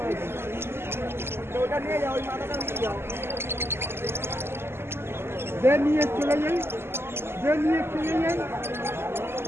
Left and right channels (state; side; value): late; left; 0.12 ms